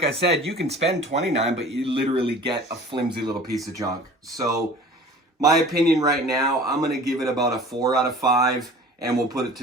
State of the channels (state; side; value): normal; both; correlation 0.44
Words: I said, you can spend $29, but you literally get a flimsy little piece of junk. So my opinion right now, I'm going to give it about a 4 out of 5, and we'll put it